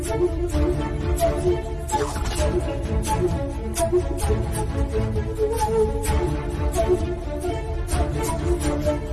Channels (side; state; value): both; identical; correlation 1.00